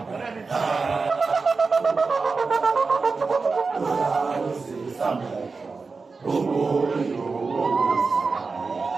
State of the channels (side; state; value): left; quieter; 4.4 dB